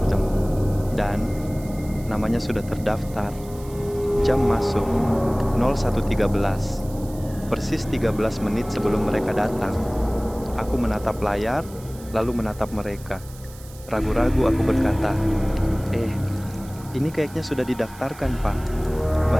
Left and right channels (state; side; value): noise; right; hiss, 21 dB below the sound